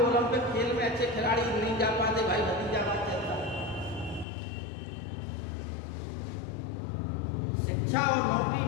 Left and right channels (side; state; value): right; drops out; at 4.2 s